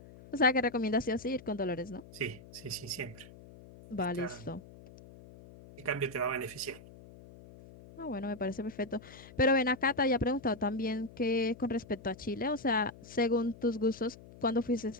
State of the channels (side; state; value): left; noise; hum, 19 dB below the sound